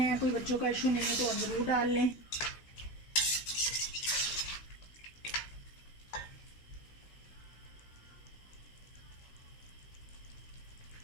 कोई बच्चों का इशू नहीं है, तो आप ज़रूर डाल लें।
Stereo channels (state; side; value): late; right; 16 ms